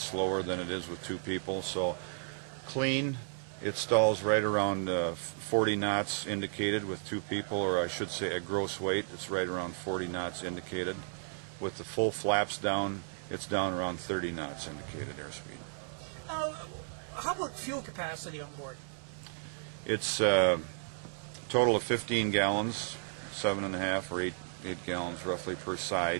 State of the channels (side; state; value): left; silent; digital silence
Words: slower than it is with 2 people, so clean it stalls right around 40 knots indicated with 2 people, or I should say at gross weight it's right around 40 knots indicated. With the full flaps down, it's down around 30 knots indicated airspeed. Now, how about fuel capacity on board? It's a total of 15 gallons, 7.5 or 8 gallons roughly per